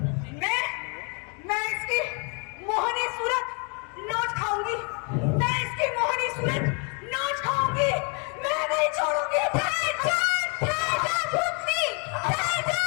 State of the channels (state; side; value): quieter; right; 36.3 dB